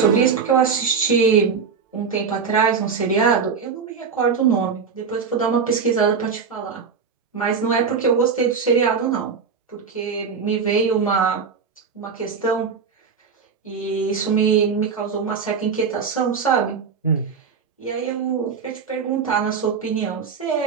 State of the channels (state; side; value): quieter; left; 5.9 dB